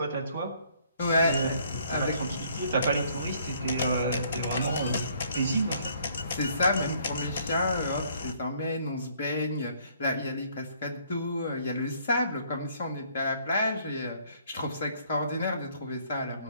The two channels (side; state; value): both; inverted; correlation -0.63